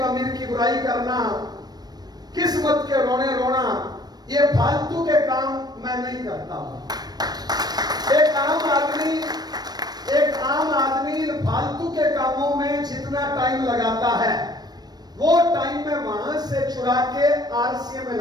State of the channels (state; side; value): late; left; 0.19 ms